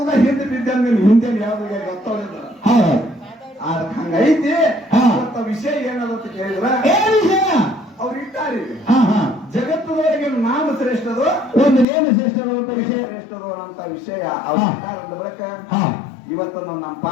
ಹಿಂದೆ ಬಿದ್ದಂಗ ಹಿಂದೆ ಯಾವ್ದು ಗೊತ್ತಾಗ ಹಂಗೈತಿ. ವಿಷಯ ಏನದಂತ ಕೇಳಿದ್ರ ಅವ್ರು ಇಟ್ಟಾರಿ ಜಗತ್ತದವರೆಗೆ ನಾಮ ಶ್ರೇಷ್ಠದು ಒಂದು ನೇಮ ಶ್ರೇಷ್ಠದು ಅಂತ ವಿಷಯ ಶ್ರೇಷ್ಠದು ಅಂತ ವಿಷಯ ಅವ್ರು ಇಟ್ಟಾರ ಬಳಿಕ ಇವತ್ತು ನಮ್ಮ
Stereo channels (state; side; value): drops out; right; at 11.9 s